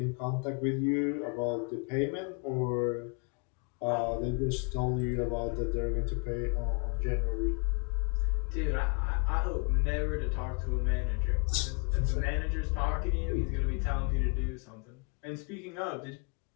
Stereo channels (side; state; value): right; quieter; 35.0 dB